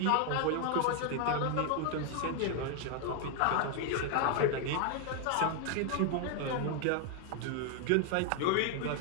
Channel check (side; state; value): both; different; correlation 0.00